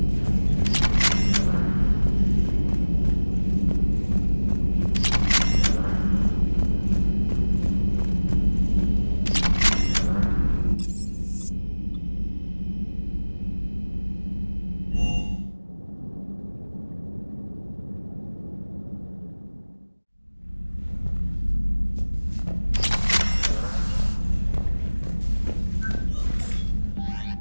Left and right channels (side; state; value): both; inverted; correlation -1.00